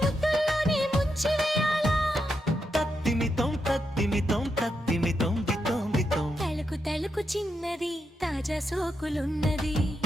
ముద్దుల్లోనే ముంచివేయాలా. తత్తిమితం తత్తిమితం తత్తిమితం బితం బితం. తళుకు తళుకు చిన్నది తాజా సోకులున్నది.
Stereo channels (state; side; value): normal; both; correlation 0.84